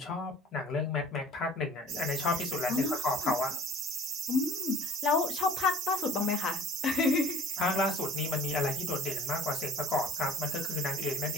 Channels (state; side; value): normal; both; correlation 0.47